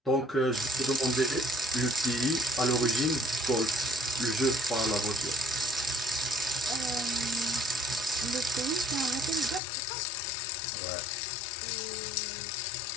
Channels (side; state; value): right; drops out; at 9.6 s